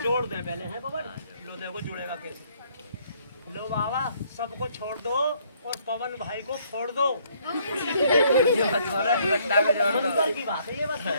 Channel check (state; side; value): inverted; both; correlation -0.66